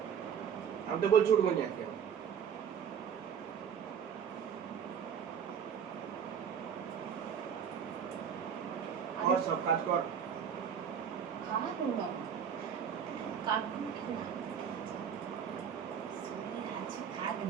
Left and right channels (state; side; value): quieter; left; 7.8 dB